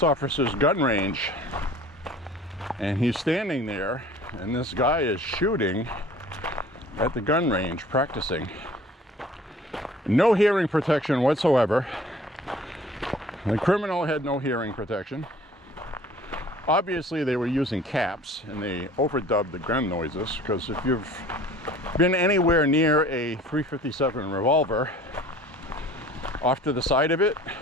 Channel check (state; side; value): normal; both; correlation 0.49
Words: officer's gun range, and he's standing there, and this guy is shooting at the gun range, practicing. No hearing protection whatsoever. The criminal had no hearing protection. Obviously they were using caps, and they overdubbed the gun noises, because if you've been anywhere near a .357 revolver, off to the side of it,